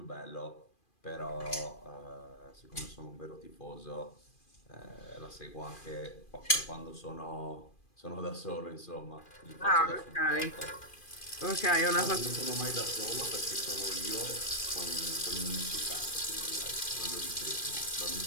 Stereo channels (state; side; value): late; right; 2.4 ms